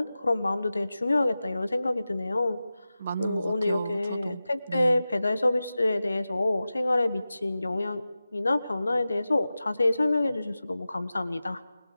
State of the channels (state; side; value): inverted; both; correlation -0.95